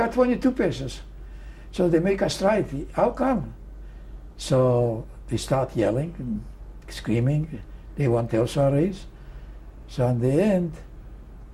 22 pesos. So they make a strike. How come? So they start yelling and screaming. They want also a raise. So in the end,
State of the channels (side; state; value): both; identical; correlation 1.00